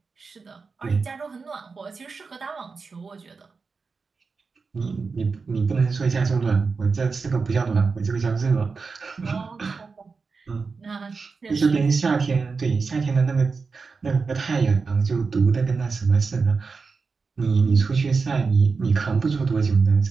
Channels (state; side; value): quieter; left; 4.7 dB